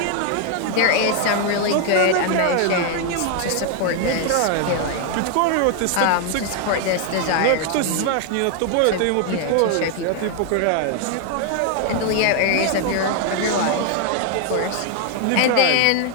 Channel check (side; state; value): both; different; correlation 0.00